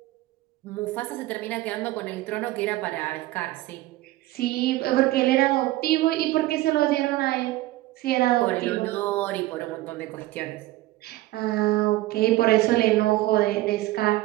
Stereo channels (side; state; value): left; quieter; 17.3 dB